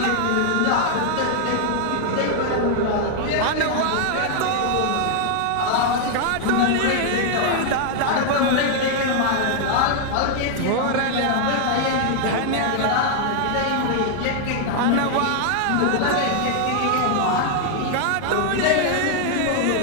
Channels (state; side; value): different; both; correlation 0.00